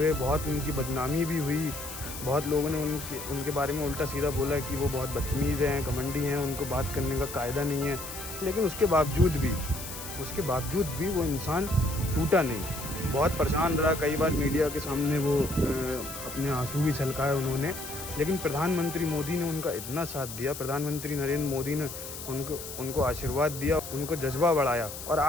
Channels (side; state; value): left; noise; hiss, 10 dB below the sound